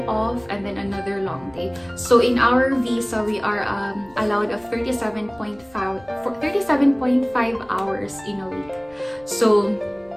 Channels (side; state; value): left; noise; rumble, 28 dB below the sound